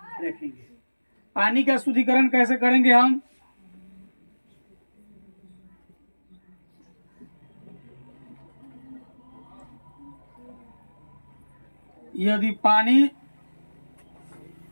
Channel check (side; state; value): both; inverted; correlation -1.00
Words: रखेंगे। पानी का शुद्धिकरण कैसे करेंगे हम? यदि पानी